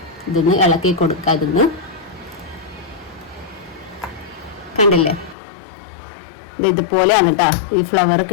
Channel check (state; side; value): drops out; right; at 5.4 s